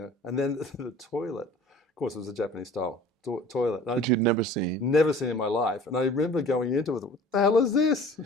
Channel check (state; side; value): normal; both; correlation 0.45